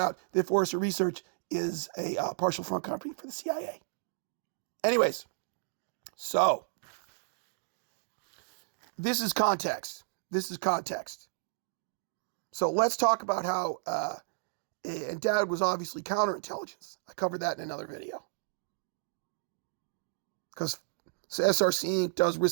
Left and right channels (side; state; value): left; silent; digital silence